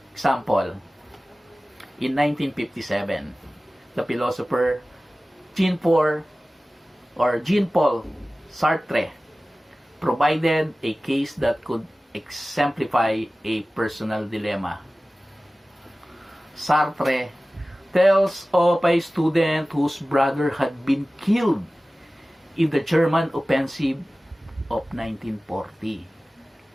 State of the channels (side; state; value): both; normal; correlation 0.97